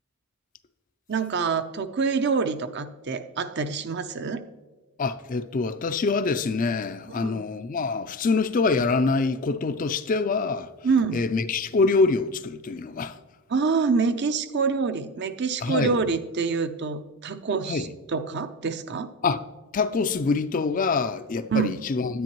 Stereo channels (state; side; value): normal; both; correlation 0.24